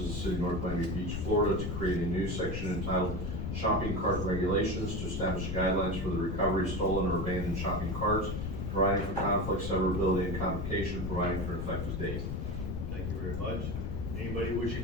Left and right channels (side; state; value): left; noise; rumble, 3 dB below the sound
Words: the City of North Miami Beach, Florida, to create a new section entitled Shopping Cart Regulations, to establish guidelines for the recovery of stolen or abandoned shopping carts, providing for conflict, severability, and complication, providing for an effective date. Thank you very much. Anybody wishing